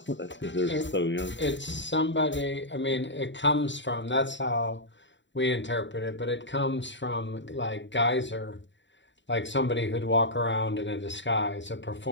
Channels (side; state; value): right; late; 0.53 ms